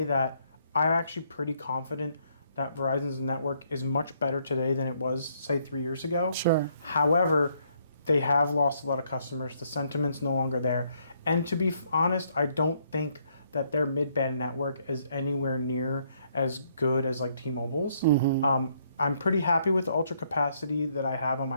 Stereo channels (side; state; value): both; inverted; correlation -0.70